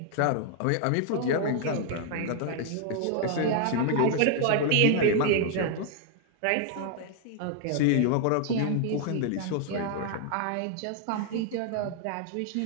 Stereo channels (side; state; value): both; different; correlation 0.00